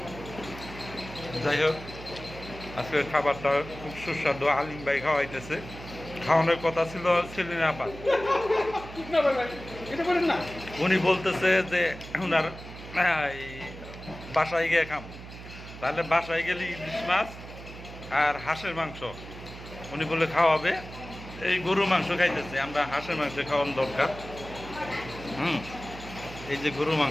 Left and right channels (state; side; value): noise; right; hum, 13 dB below the sound